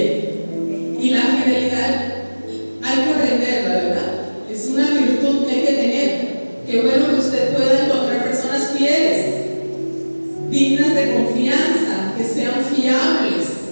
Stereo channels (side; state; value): both; inverted; correlation -1.00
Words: Y la fidelidad hay que aprenderla, ¿verdad? Es una virtud que hay que tener. Qué bueno que usted pueda encontrar personas fieles, dignas de confianza, que sean fiables.